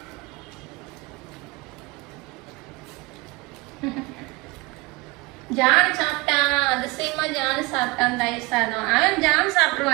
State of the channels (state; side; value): quieter; left; 24.4 dB